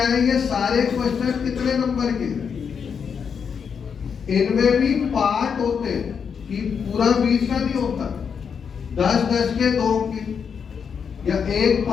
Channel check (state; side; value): quieter; right; 6.7 dB